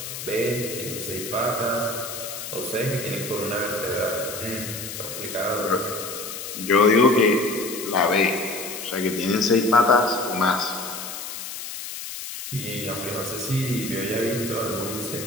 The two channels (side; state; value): left; noise; hiss, 8 dB below the sound